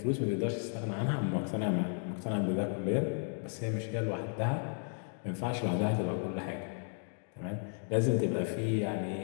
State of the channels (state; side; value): silent; right; 55 dB below the other